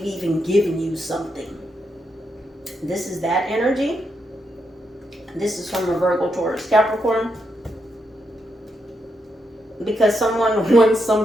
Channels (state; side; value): normal; both; correlation 0.81